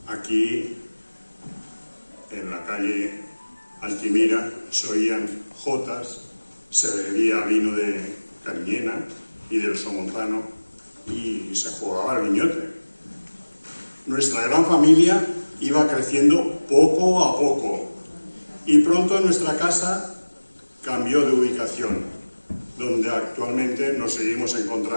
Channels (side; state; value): both; inverted; correlation -1.00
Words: Aquí, en la calle Altimira, se oían jotas, se bebía vino de Cariñena y del Somontano y se jugaba al guiñote. Nuestra gran familia iba creciendo poco a poco y pronto nuestra casa cambió de ubicación, donde actualmente nos seguimos